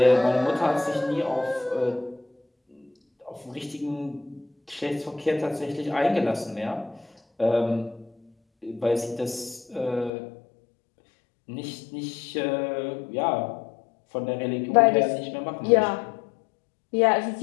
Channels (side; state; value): right; drops out; at 10.1 s